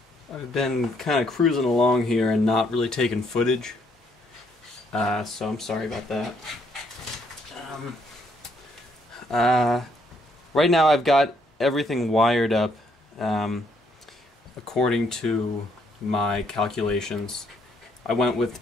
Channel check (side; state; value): both; normal; correlation 0.70